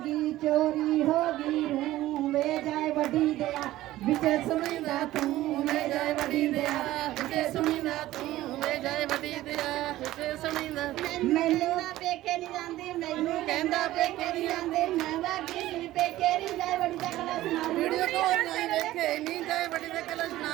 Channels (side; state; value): left; quieter; 15.6 dB